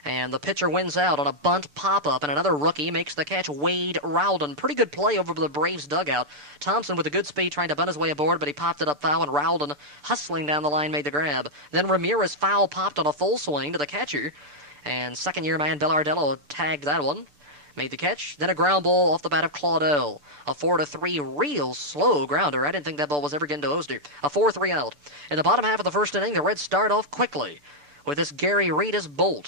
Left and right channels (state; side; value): late; left; 6.8 ms